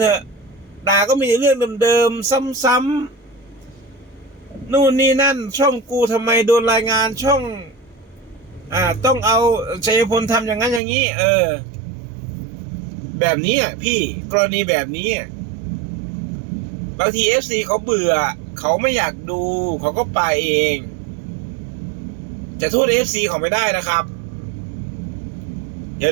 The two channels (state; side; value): drops out; left; at 10.8 s